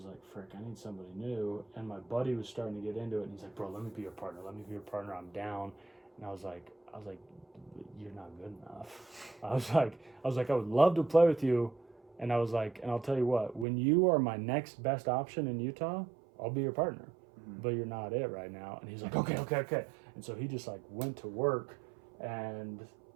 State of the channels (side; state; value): left; drops out; at 13.7 s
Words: like, frick, I need somebody new. And my buddy was starting to get into it, and he's like, bro, let me be your partner. Let me be your partner. I'm down. And I was like, you're not good enough. I was like, I would love to play with you. And I was like, and I'll tell you what, when you are my next best option in Utah, I'll be your partner. But you're not it right now. And he's like, okay. And so he just like went to work, and